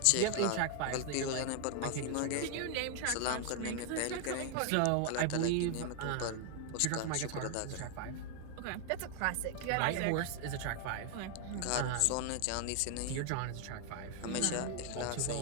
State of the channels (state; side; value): different; both; correlation 0.00